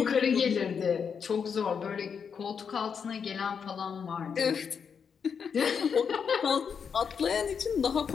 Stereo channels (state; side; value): quieter; right; 6.6 dB